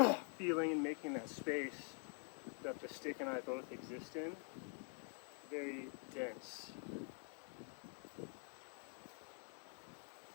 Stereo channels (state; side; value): quieter; right; 37.7 dB